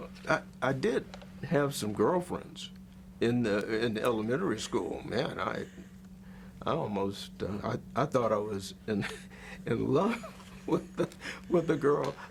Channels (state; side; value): identical; both; correlation 1.00